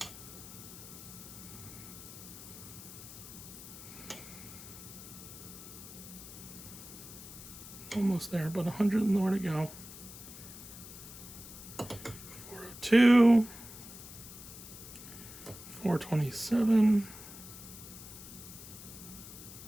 Almost there, but 100 more to go. 402. 427.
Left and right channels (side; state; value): left; noise; hiss, 14 dB below the sound